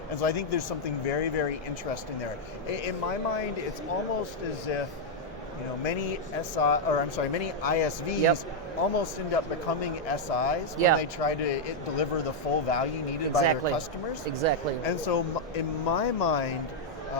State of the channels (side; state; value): both; normal; correlation -0.02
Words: so I think there's something very, very interesting there. In my mind, it's almost as if many ISVs almost end up becoming SIs when they try to deliver the full value needed by their customers. And so in my mind,